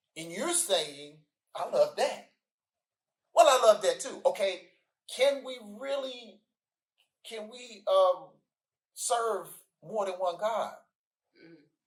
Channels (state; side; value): identical; both; correlation 1.00